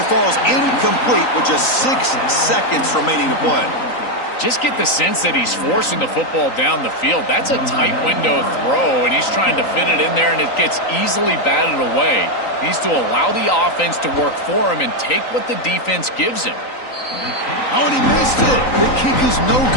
falls incomplete with just 6 seconds remaining to play. Just get the sense that he's forcing the football down the field. That's a tight window throw, and he's trying to fit it in there, and it gets easily batted away. He needs to allow the offense to work for him and take what the defense gives him. Oh, and he missed it. The kick is no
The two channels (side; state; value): right; late; 3.9 ms